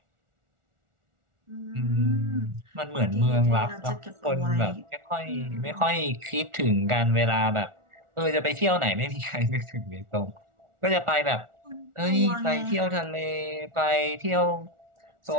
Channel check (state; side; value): late; left; 1.4 ms